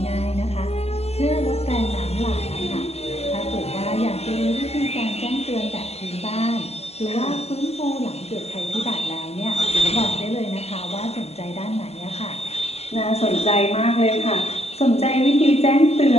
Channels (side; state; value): right; late; 0.30 ms